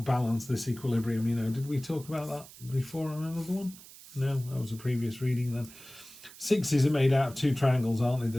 balance, this equilibrium, you know. Did we talk about that before on another one? No, that was a previous reading then. 6s are made out of 2 triangles, aren't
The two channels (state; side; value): noise; right; hiss, 19 dB below the sound